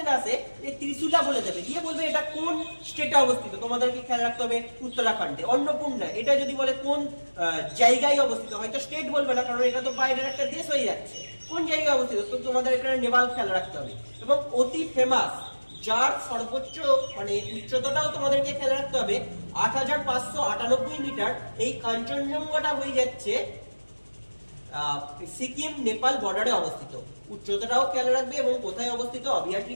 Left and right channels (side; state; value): both; inverted; correlation -1.00